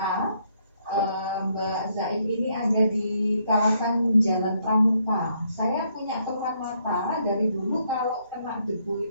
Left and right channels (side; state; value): both; inverted; correlation -0.72